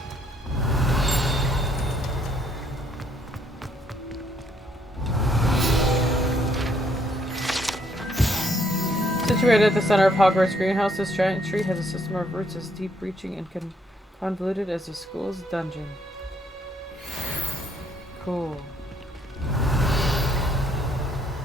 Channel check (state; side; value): normal; both; correlation 0.69